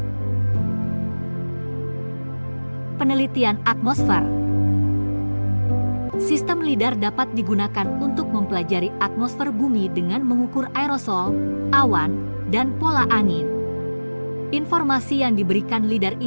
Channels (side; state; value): both; inverted; correlation -1.00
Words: Penelitian atmosfer. Sistem lidar dapat digunakan untuk mempelajari atmosfer bumi dengan mengukur aerosol, awan, dan pola angin. Informasi yang diberikan lidar